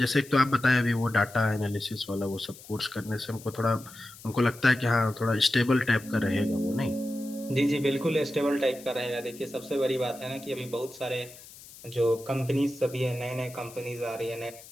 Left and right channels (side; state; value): left; noise; hiss, 19 dB below the sound